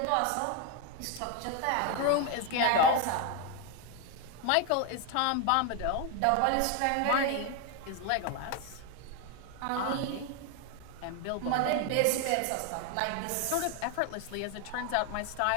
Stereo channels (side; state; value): both; different; correlation 0.01